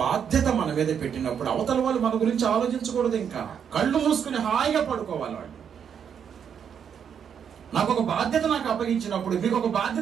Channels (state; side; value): quieter; left; 7.8 dB